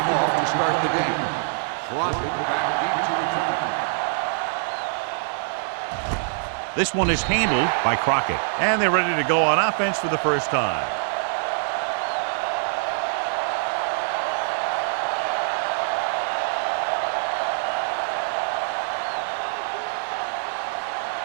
start the game. Dropping back deep to return. This one is handled by Crockett. And they're ready to go on offense for the first time.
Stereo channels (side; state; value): left; silent; digital silence